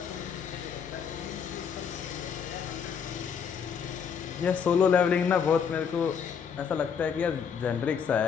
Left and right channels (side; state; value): right; quieter; 6.9 dB